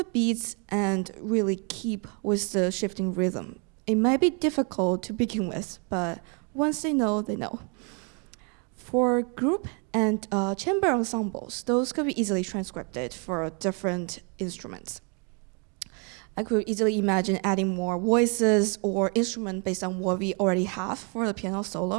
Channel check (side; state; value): left; quieter; 36.6 dB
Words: beats and really keep with the shifting rhythm. It might be difficult to begin with, but once they know, they know. For group and chamber ensembles, those could be easily transcribed for different instruments. I could easily imagine adding more voices or instrument based on what we already have for the piano